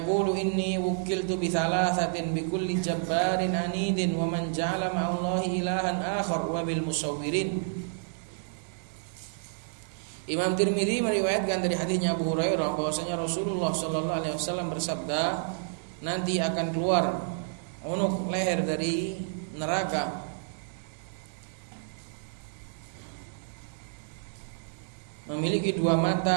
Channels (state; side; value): silent; left; digital silence